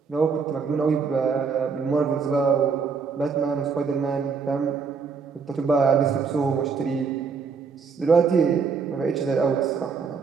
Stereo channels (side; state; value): left; quieter; 5.5 dB